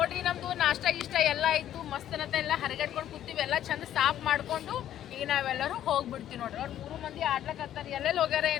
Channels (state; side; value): quieter; right; 11.5 dB